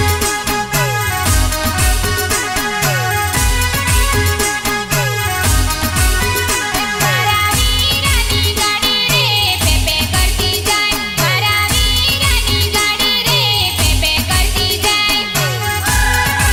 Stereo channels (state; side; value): identical; both; correlation 1.00